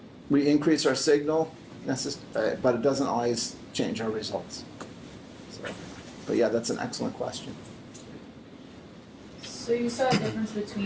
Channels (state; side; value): identical; both; correlation 1.00